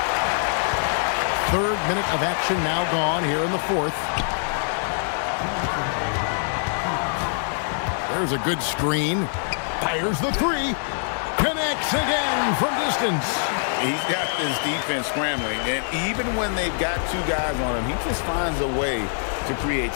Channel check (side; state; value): right; silent; 58 dB below the other